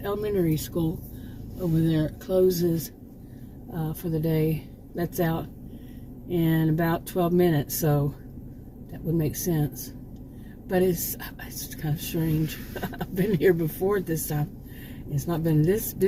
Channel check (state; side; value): identical; both; correlation 1.00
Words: elementary school over there closes for the day. That's out in about 12 minutes, so that would make sense. But it's kind of strange. I've been here before at this time. It's not been this